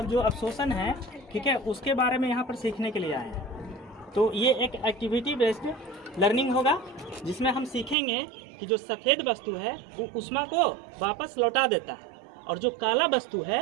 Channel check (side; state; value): left; drops out; at 8.0 s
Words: जो अवशोषण है, ठीक है, उसके बारे में यहाँ पर सीखने के लिए आए हैं। तो ये एक एक्टिविटी बेस्ड लर्निंग होगा जिसमें हम सीखेंगे कि जो सफ़ेद वस्तु है वो ऊष्मा को वापस लौटा देता है और जो काला वस्तु है